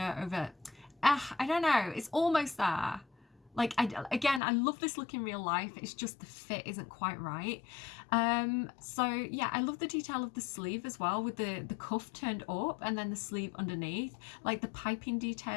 over. I don't know, it's almost there. Like, again, I love this look in real life, it's just the fit isn't quite right. So yeah, I love the detail of the sleeve as well, with the cuff turned up and then the sleeve underneath, like the piping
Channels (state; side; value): drops out; right; at 4.4 s